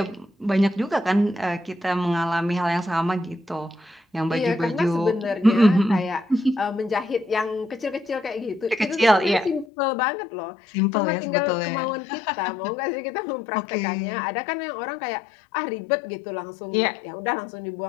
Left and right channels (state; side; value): drops out; right; at 9.7 s